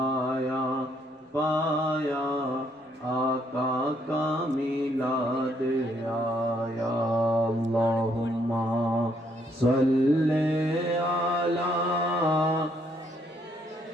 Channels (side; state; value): both; normal; correlation 0.70